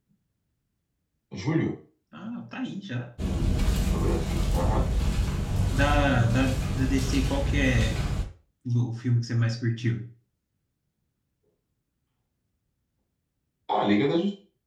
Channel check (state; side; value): identical; both; correlation 1.00